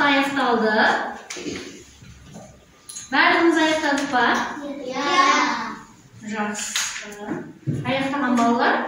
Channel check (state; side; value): identical; both; correlation 1.00